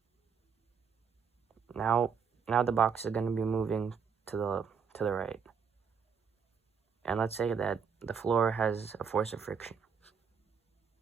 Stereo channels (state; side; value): quieter; left; 6.4 dB